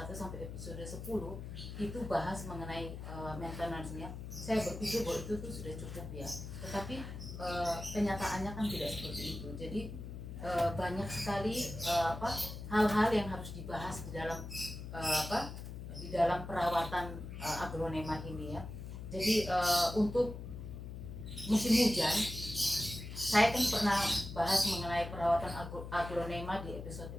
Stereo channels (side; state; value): left; noise; hum, 9 dB below the sound